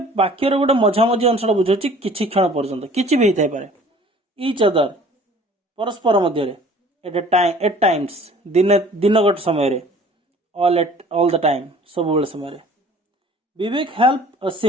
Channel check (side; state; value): both; normal; correlation 0.50